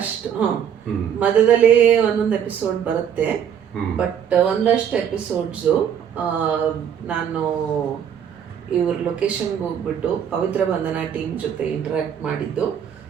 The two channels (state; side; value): quieter; left; 8.6 dB